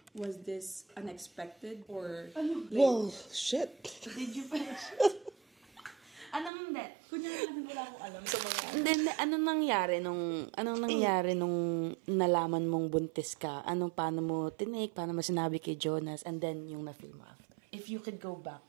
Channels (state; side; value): drops out; left; at 6.5 s